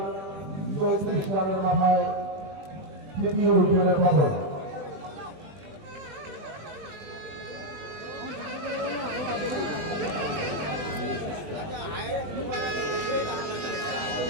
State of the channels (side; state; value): left; late; 21 ms